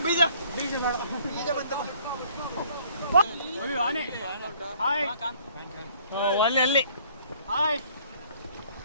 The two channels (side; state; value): both; inverted; correlation -0.58